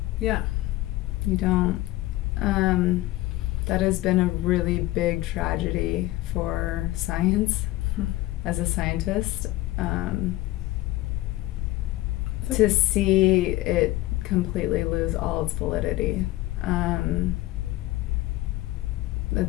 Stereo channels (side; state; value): right; quieter; 17.3 dB